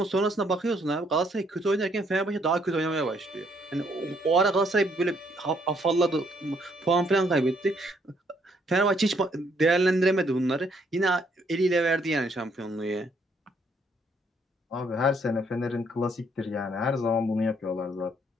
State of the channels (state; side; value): normal; both; correlation 0.69